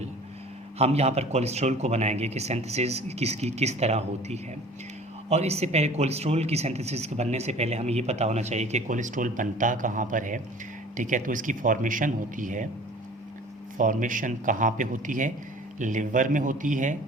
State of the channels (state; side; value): normal; both; correlation 0.46